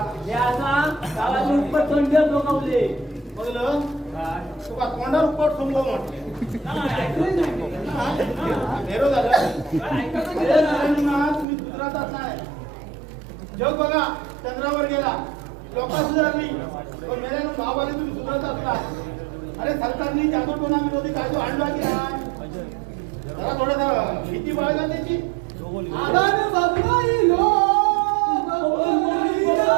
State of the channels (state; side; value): drops out; left; at 11.5 s